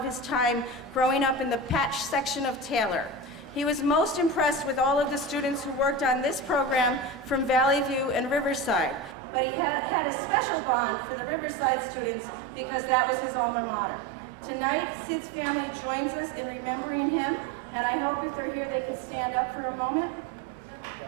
his time growing up in the Patch section of Taylor. He was most impressed with all of the students who worked on this program from Valley View and Riverside, but he had a special bond for the Riverside students because that was his alma mater. Tonight, Sid's family joins us in remembering him, and I hope if they're here they could stand up for a moment.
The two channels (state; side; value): drops out; left; at 9.2 s